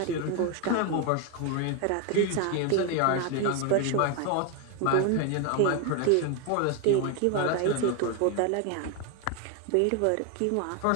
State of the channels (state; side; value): different; both; correlation 0.01